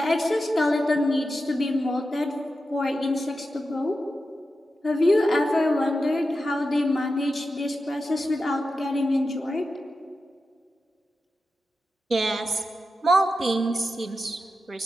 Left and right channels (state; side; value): normal; both; correlation 0.90